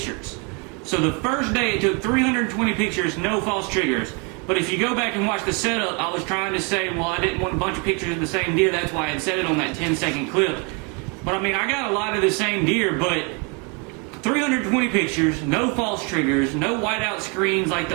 So the first day it took 320 pictures, no false triggers. But if you go back and watch the setup, I was trying to say, well, I didn't want a bunch of pictures of the same deer, that's why I had set it on that 10-second clip. But I mean, I got a lot of the same deer, but 320 pictures, no false triggers, no whiteout screens like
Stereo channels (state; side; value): quieter; left; 33.4 dB